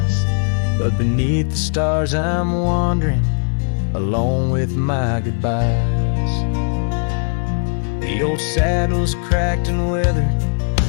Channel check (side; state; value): right; silent; 67 dB below the other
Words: But beneath the stars I'm wandering, alone with my goodbyes. The old saddle's cracked and weathered,